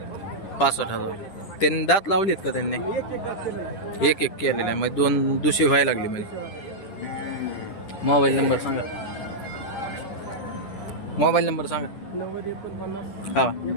65,000. त्यांनी दात लावलेत का त्यांनी? एक केलेले आहे. मग 2 दुशी व्हायला लागली. म्हणजे मोबाईल नंबर सांगा. मोबाईल नंबर सांगा. हा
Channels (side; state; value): right; late; 10 ms